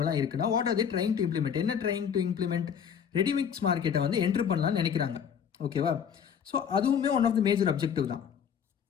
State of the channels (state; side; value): quieter; right; 7.7 dB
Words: இருக்குன்னா, what are they trying to implement, என்ன ட்ரைங் டு இம்ப்ளிமெண்ட்? ரெடிமிக்ஸ் மார்க்கெட்டை வந்து என்ட்ரு பண்ணலாம்னு நினைக்கிறாங்க. ஓகேவா? ஸோ அதுவுமே one of the major objective தான்.